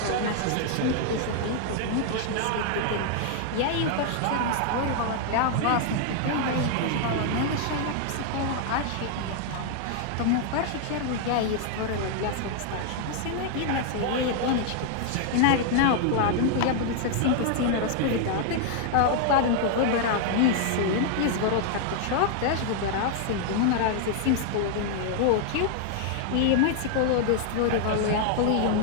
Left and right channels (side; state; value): both; different; correlation 0.00